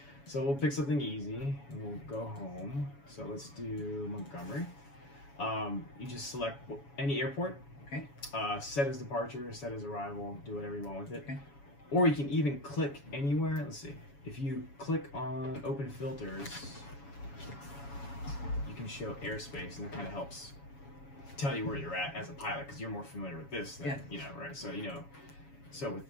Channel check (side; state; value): right; late; 7.1 ms